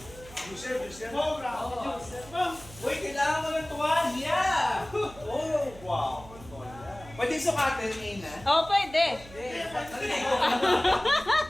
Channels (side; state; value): right; noise; hum, 19 dB below the sound